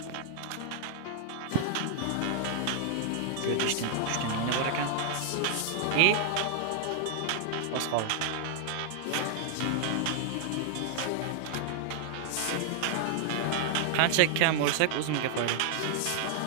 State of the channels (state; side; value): different; both; correlation 0.00